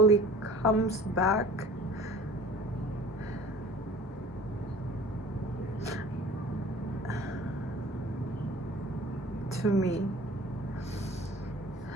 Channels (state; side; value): normal; both; correlation 0.46